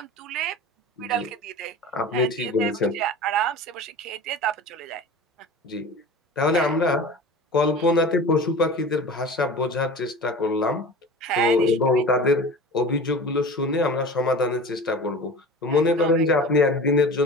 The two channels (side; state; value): both; normal; correlation 0.36